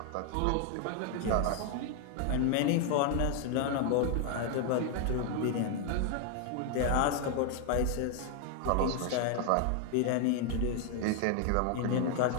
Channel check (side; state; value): both; different; correlation 0.00